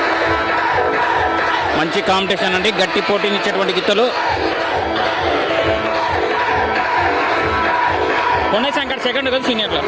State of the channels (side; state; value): both; identical; correlation 1.00